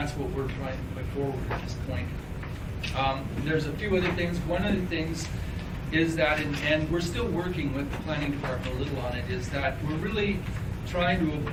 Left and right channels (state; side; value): identical; both; correlation 1.00